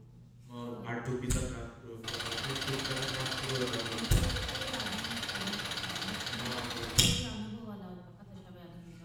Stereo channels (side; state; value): both; identical; correlation 1.00